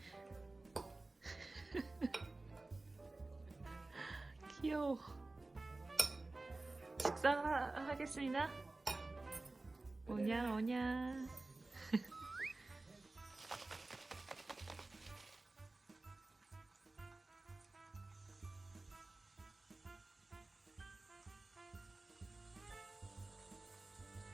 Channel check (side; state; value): left; quieter; 3.1 dB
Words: 귀여워. 식사하겠습니다. 오냐 오냐.